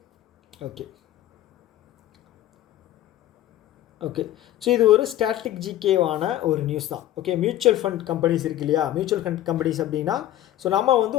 okay okay so இது ஒரு ஸ்டாட்டிக் ஜிகேவான ஒரு நியூஸ் தான். ஓகே, மியூச்சுவல் ஃபண்ட் கம்பெனிஸ் இருக்கு இல்லையா, மியூச்சுவல் ஃபண்ட் கம்பெனிஸ் அப்படின்னா, ஸோ நம்ம வந்து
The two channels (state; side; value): quieter; right; 13.4 dB